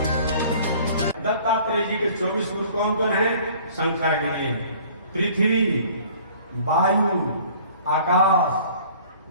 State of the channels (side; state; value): both; inverted; correlation -0.51